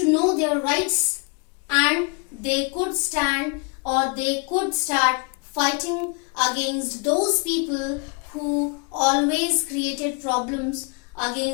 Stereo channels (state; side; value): quieter; right; 34.9 dB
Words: know their rights, and they could stand or they could start fighting against those people who always created problems